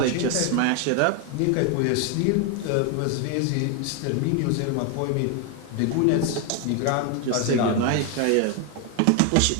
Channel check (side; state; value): both; different; correlation 0.01